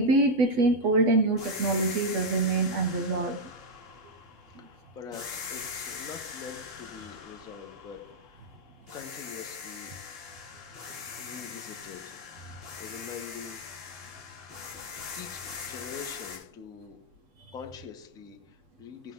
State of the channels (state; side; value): late; left; 2.8 ms